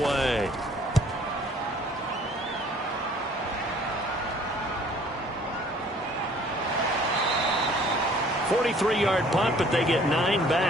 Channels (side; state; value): both; normal; correlation 0.55